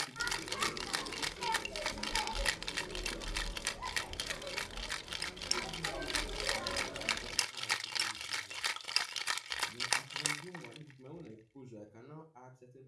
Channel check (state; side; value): identical; both; correlation 1.00